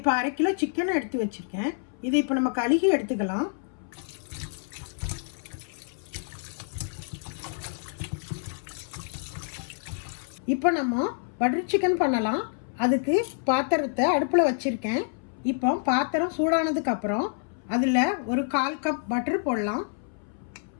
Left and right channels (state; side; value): silent; right; 60 dB below the other